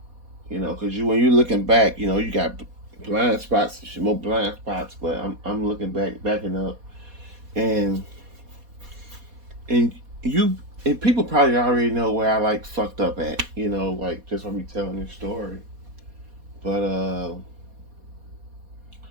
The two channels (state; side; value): late; left; 4.2 ms